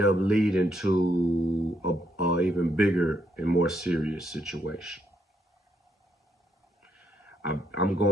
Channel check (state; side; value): normal; both; correlation 0.76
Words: up leading to a even bigger and more serious situation. I'm